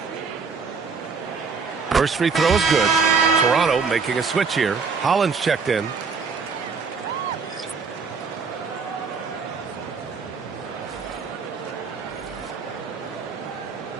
First free throw is good. Toronto making a switch here. Hollins checked in.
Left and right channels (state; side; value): quieter; left; 5.1 dB